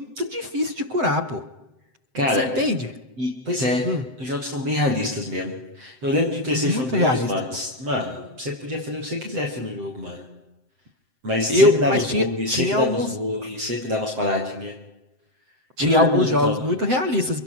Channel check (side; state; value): left; late; 7.7 ms